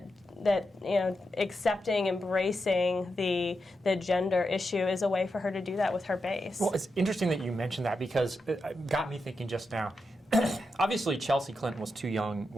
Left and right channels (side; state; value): both; normal; correlation 0.87